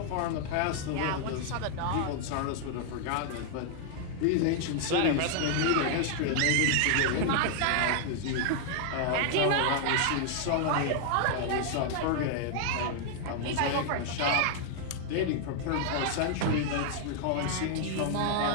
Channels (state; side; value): different; both; correlation 0.00